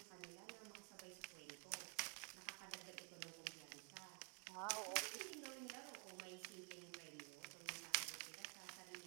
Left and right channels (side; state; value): left; quieter; 38.3 dB